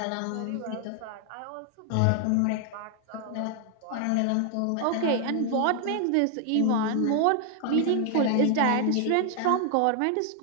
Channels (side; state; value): both; different; correlation 0.00